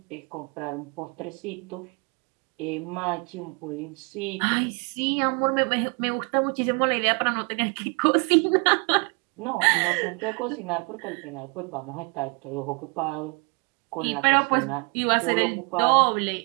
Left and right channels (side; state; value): left; quieter; 33.6 dB